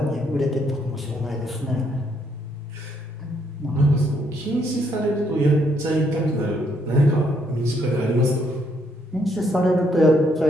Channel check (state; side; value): normal; both; correlation 0.72